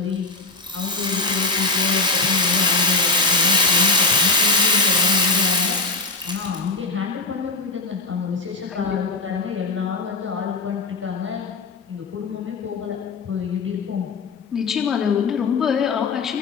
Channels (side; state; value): right; quieter; 3.6 dB